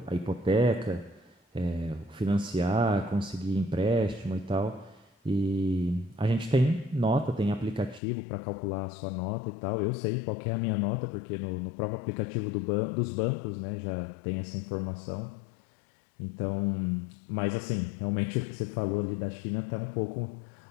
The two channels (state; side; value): drops out; right; at 8.0 s